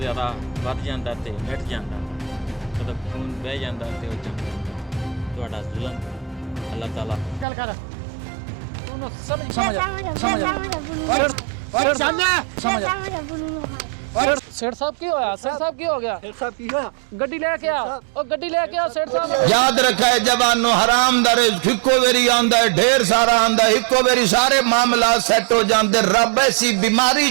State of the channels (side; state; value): left; drops out; at 7.5 s